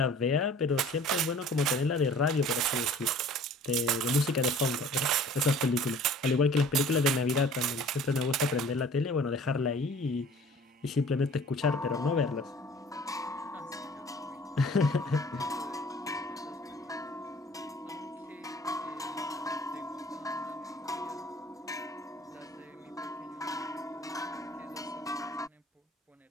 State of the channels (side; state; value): both; normal; correlation 0.49